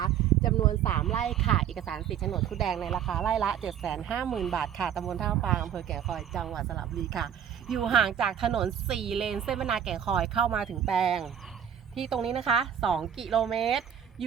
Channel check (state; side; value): quieter; left; 9.2 dB